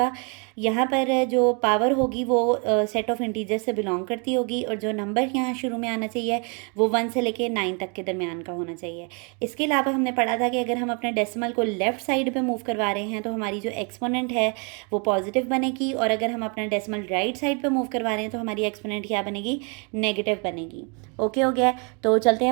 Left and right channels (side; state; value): left; quieter; 35.1 dB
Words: यहाँ पर जो पावर होगी वो सेट ऑफ इंटीजर से बिलोंग करती होगी, और जो नंबर यहाँ शुरू में आना चाहिए वो 1 से लेके 9 तक के दरमियान का होना चाहिए। इसके अलावा हमने पढ़ा था कि अगर हम अपने डेसिमल को लेफ़्ट साइड पे मूव करवा रहे हैं तो हमारी जो एक्सपोनेंट है वो पॉजिटिव बनेगी, और अगर हम अपना डेसिमल राइट साइड पे मूव करवा रहे हैं तो हमारी एक्सपोनेंट क्या बनेगी, नेगेटिव बनेगी। ओके हो गया। तो चलते